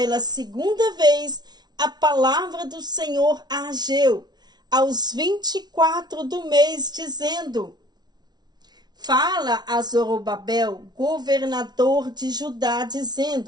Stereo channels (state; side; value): late; left; 0.19 ms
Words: segunda vez a palavra do Senhor a Ageu, aos 24 do mês, dizendo: fala a Zorobabel, governador de Judá,